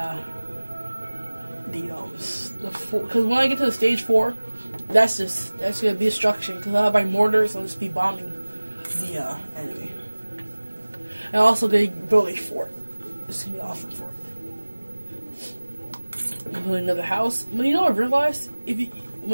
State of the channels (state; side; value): inverted; both; correlation -1.00